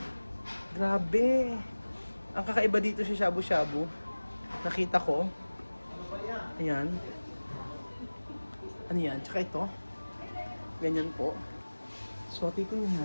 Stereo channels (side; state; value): both; inverted; correlation -1.00